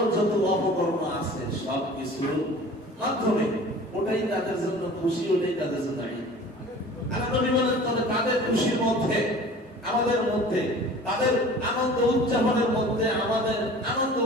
যত অপকর্ম আছে সব কিছুর মাধ্যমে। ওটাই তাদের জন্য খুশি, ওটাই তাদের জন্য ঈদ। আল্লাহ নবী বলেন, তবে তাদের খুশির মধ্যে, আমাদের মধ্যে, তাদের আনন্দ উদযাপনের মধ্যে, আমাদের আনন্দ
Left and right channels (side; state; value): both; normal; correlation 0.43